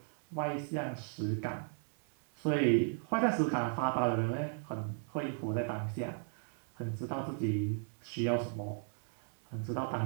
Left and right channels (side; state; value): left; silent; 54 dB below the other